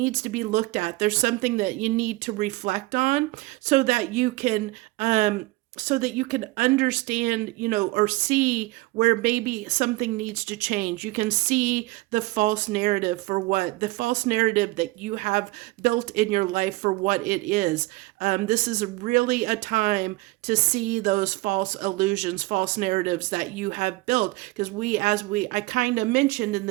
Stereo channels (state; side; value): quieter; left; 21.3 dB